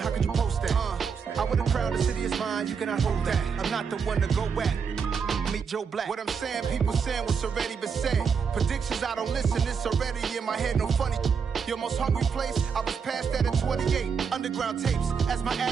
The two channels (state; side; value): quieter; left; 6.2 dB